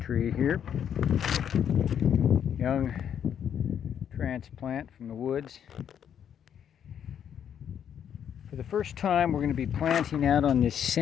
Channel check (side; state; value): right; quieter; 8.9 dB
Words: tree here, young transplant from the woods. For the first time, we're going to be planting out on this